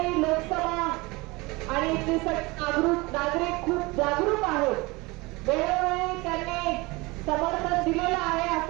लोकसभा आणि इथले नागरिक खूप जागरूक आहेत। वेळोवेळी त्यांनी समर्थन दिलेलं आहे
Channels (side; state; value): left; quieter; 24.0 dB